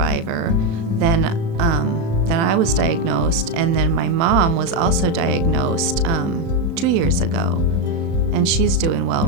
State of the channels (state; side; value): late; left; 36 ms